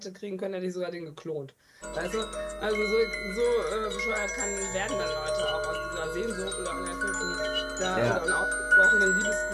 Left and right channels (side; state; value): both; identical; correlation 1.00